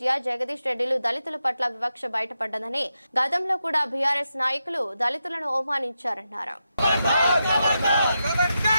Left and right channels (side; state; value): both; inverted; correlation -0.87